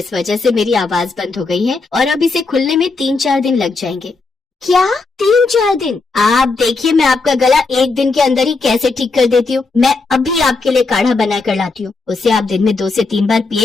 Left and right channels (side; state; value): right; quieter; 3.9 dB